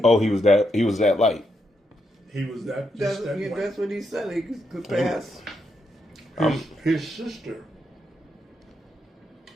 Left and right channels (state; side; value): normal; both; correlation 0.81